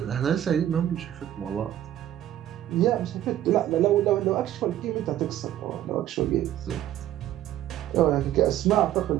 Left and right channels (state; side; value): quieter; left; 12.3 dB